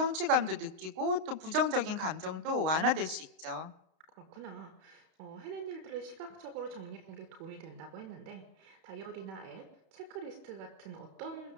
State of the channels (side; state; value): left; late; 31 ms